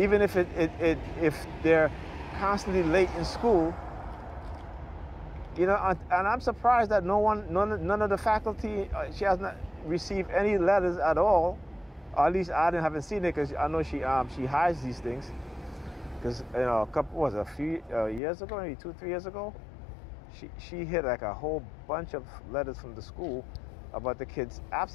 if if they're constantly late in school. And I'm surprised that none of the faculty, she has not received any letters at all, or at least I haven't seen it, because I know she hides these things. Because a few years ago, maybe 2-3 years ago, she hit like a whole bunch of letters from the school about the kids'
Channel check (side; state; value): right; drops out; at 18.2 s